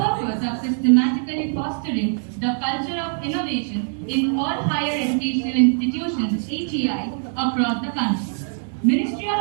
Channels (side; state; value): left; silent; digital silence